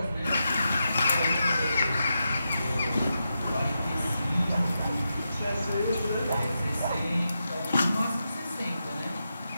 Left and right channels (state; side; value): inverted; both; correlation -0.87